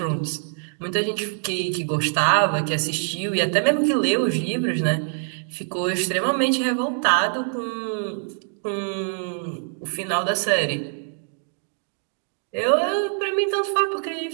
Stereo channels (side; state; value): left; silent; 62 dB below the other